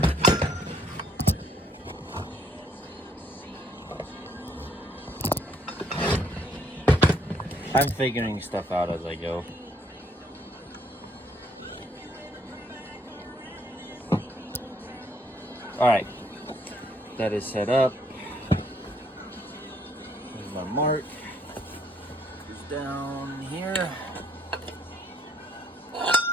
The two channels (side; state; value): both; normal; correlation 0.67